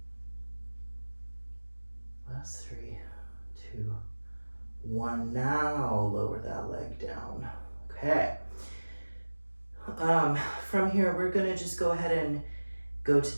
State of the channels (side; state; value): both; inverted; correlation -1.00